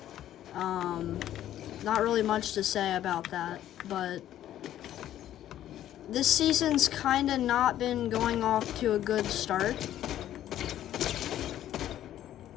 Not really much to say about that, but this season's kinda not been going off to a good start.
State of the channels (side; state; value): right; quieter; 12.1 dB